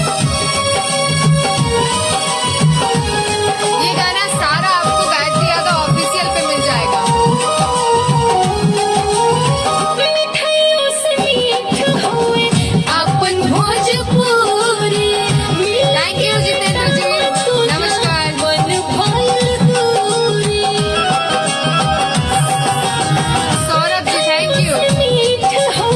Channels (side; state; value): both; identical; correlation 1.00